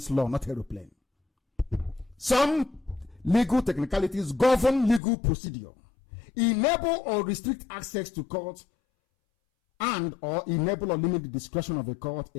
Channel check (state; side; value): drops out; right; at 5.0 s